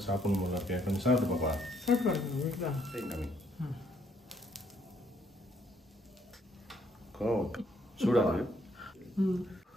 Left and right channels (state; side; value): normal; both; correlation 0.69